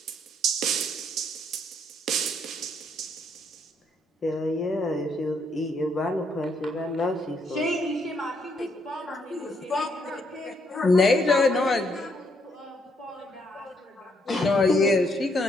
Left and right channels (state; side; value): normal; both; correlation 0.72